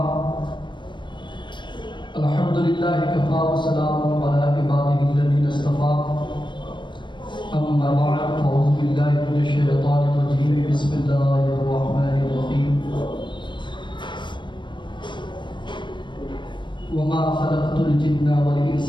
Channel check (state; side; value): late; right; 0.22 ms